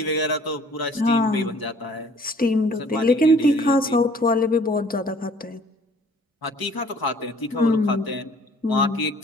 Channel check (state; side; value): normal; both; correlation 0.55